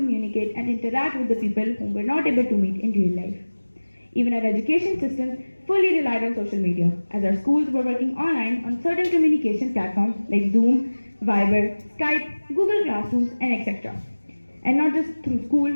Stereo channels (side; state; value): both; inverted; correlation -1.00